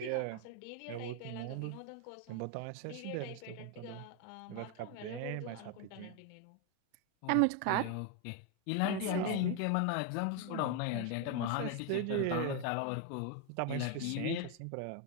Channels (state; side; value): different; both; correlation 0.01